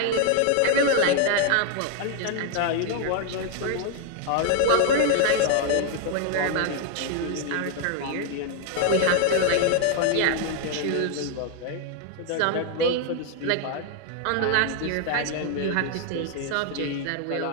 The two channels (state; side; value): different; both; correlation 0.00